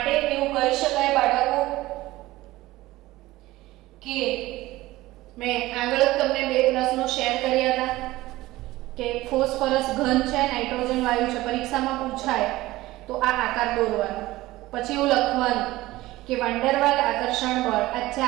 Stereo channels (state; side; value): quieter; left; 17.9 dB